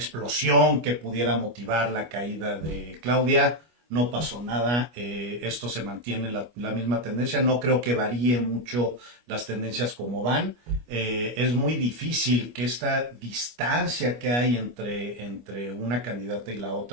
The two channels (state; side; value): late; left; 25 ms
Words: que pudiera motivar la caída de Claudia. No pasó nada, esto se mantiene la misma tendencia, no creo que varíe mucho las tendencias como van. Es muy difícil que esta distancia que hay entre una candidata y la